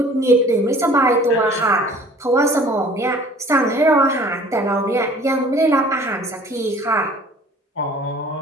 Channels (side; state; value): both; normal; correlation 0.50